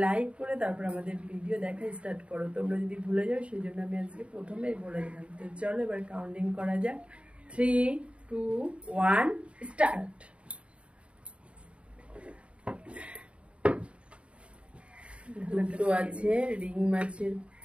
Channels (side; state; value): left; late; 0.060 ms